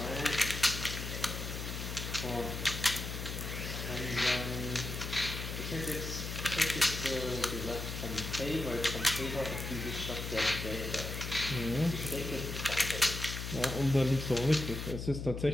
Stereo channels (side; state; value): left; noise; hum, 5 dB below the sound